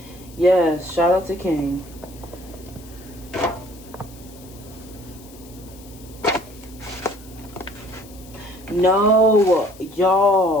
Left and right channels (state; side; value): noise; left; hiss, 22 dB below the sound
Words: Yes, shout out to King. No,